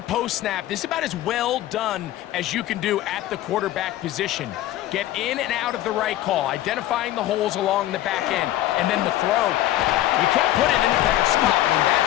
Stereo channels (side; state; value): right; quieter; 14.4 dB